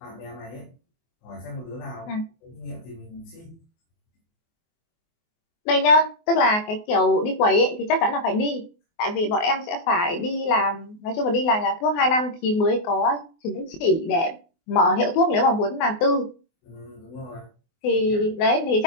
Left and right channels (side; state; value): right; late; 24 ms